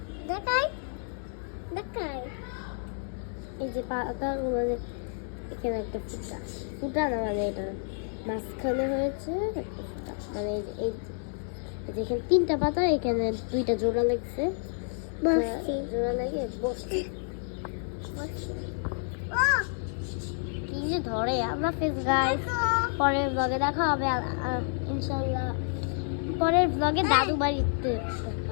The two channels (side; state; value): right; silent; 58 dB below the other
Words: দেখাই এই যে পাতা, এখানে একটা ফুটা না, মানে এটা মাঝখানে হয়েছে একটা ফুটা, মানে এই যেখানে 3টা পাতা, এখানে 2টা জোড়া লাগছে, জোড়া লাগে বসছে। কি যে ধরে আমরা ফেস গাইস, পরের ব্লগে দেখা হবে ইনশাআল্লাহ, পরের ব্লগে দাদু বাড়িতে দেখা